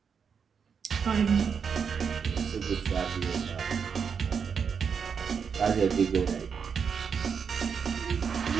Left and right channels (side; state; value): left; quieter; 6.5 dB